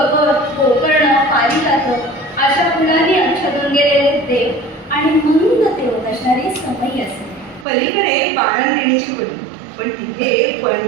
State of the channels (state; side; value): drops out; left; at 7.7 s